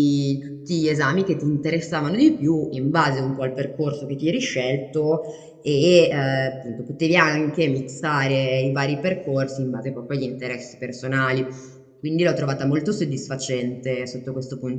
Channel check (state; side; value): identical; both; correlation 1.00